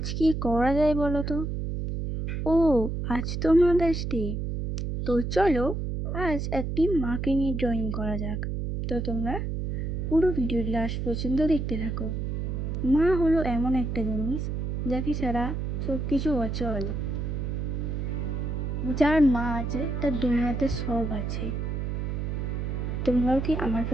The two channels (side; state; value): right; noise; hum, 2 dB below the sound